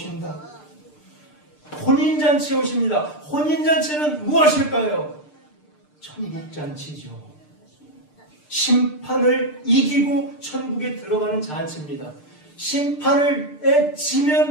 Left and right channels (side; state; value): right; late; 6.7 ms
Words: 혼인잔치에 오십니다. 혼인잔치는 무엇일까요? 천국잔치죠. 심판을 이기고 천국에 들어가는 잔치입니다. 심판을